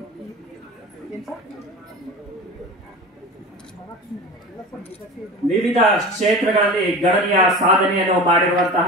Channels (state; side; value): normal; both; correlation 0.32